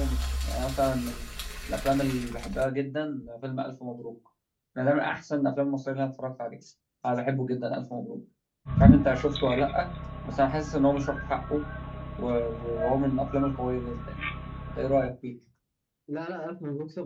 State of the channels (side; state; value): both; identical; correlation 1.00